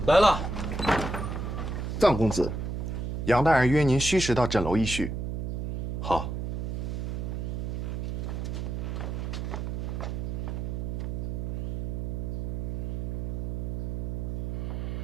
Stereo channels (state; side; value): noise; right; hum, 2 dB below the sound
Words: 来了，藏公子，杨大人约您虚实到枕楼一叙。好。